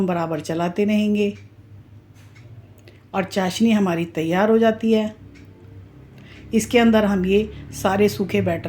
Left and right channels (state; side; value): identical; both; correlation 1.00